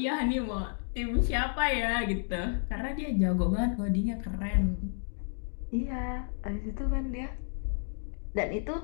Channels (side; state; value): right; silent; 57 dB below the other